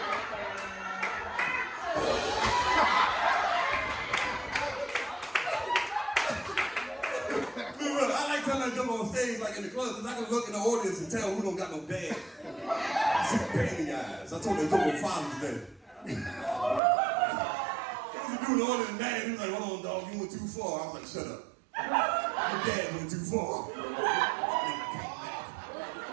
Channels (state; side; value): drops out; left; at 16.8 s